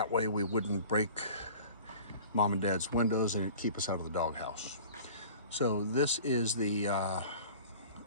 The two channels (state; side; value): inverted; both; correlation -0.43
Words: way we wouldn't break Mom and Dad's windows and it'd keep us out of the doghouse. So this is the